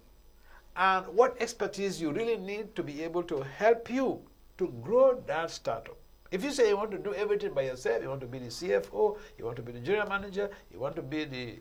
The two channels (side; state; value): both; identical; correlation 1.00